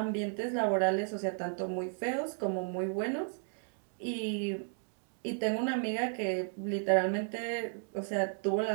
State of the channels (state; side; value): silent; left; 55 dB below the other